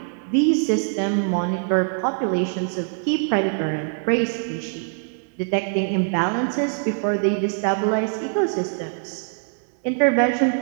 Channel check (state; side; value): silent; left; 63 dB below the other